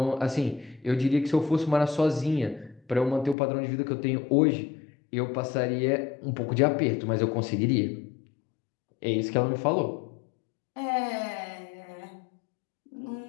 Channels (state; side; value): drops out; right; at 3.4 s